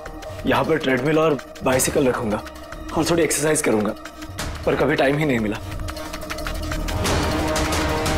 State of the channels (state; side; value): identical; both; correlation 1.00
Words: यहाँ पर ट्रेडमिल और बाइसिकल रखूंगा और थोड़ी एक्सरसाइज करूंगा, पर कभी टाइम ही नहीं मिला।